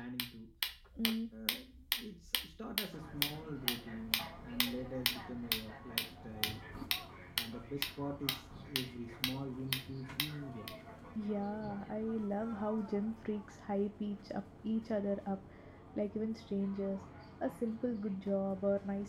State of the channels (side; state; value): both; identical; correlation 1.00